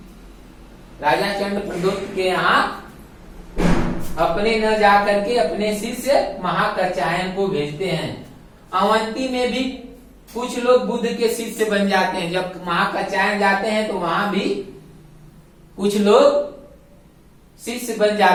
राजा चंड प्रदोत के यहाँ अपने न जा करके अपने शिष्य महाकचायन को भेजते हैं। अवंती में भी कुछ लोग बुद्ध के शिष्य बन जाते हैं। जब महाकचायन जाते हैं तो वहां भी कुछ लोग शिष्य बन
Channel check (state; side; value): identical; both; correlation 1.00